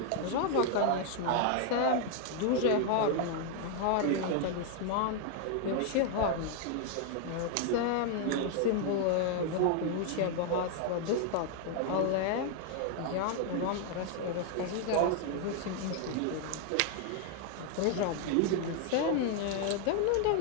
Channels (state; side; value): different; both; correlation 0.00